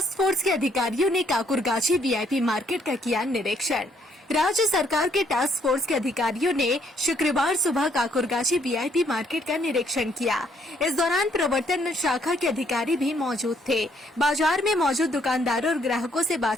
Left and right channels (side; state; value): both; normal; correlation 0.68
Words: फोर्स के अधिकारियों ने काकुरगाछी वीआईपी मार्केट का किया निरीक्षण। राज्य सरकार के टास्क फोर्स के अधिकारियों ने शुक्रवार सुबह काकुरगाछी वीआईपी मार्केट का निरीक्षण किया। इस दौरान प्रवर्तन शाखा के अधिकारी भी मौजूद थे। बाजार में मौजूद दुकानदारों और ग्राहकों से